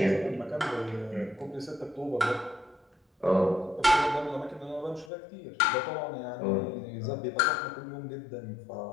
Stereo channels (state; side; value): drops out; right; at 5.1 s